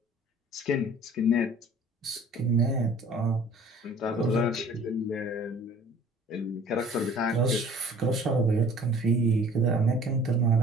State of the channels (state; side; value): normal; both; correlation 0.50